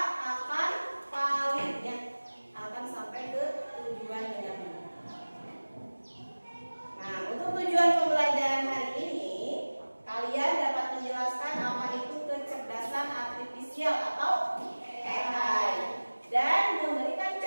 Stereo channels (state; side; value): inverted; both; correlation -1.00